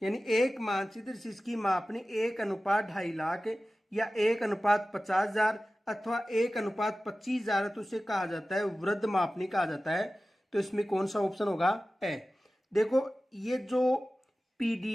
यानी एक मानचित्र जिसकी मापनी 1:2.5 लाख या 1:50,000 अथवा 1:25,000 तो उसे कहा जाता है वृत्त मापनी कहा जाता है। तो इसमें कौन सा ऑप्शन होगा? ए। देखो ये जो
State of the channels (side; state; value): both; normal; correlation 0.96